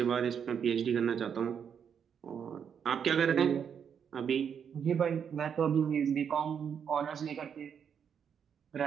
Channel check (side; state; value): left; quieter; 7.6 dB